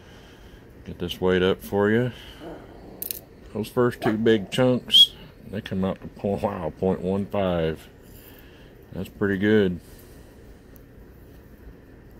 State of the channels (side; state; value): both; identical; correlation 1.00